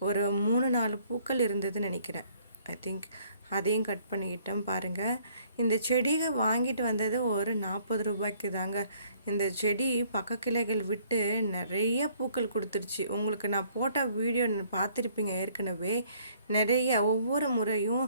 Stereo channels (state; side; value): inverted; both; correlation -0.62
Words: ஒரு 3-4 பூக்கள் இருந்ததுன்னு நினைக்கிறேன். ஐ திங்க் அதையும் கட் பண்ணிக்கிட்டோம். பாருங்கள், இந்த செடியை வாங்கிட்டு வந்தது ஒரு 40 ரூபாய்க்கு தாங்க. இந்த செடி பக்க கிளைகள் விட்டு நிறைய பூக்கள் கொடுத்துருச்சு. உங்களுக்கு நான் போட்ட வீடியோ பார்த்துருப்பீங்க ஏற்கனவே. நிறைய ஒவ்வொரு முறையும்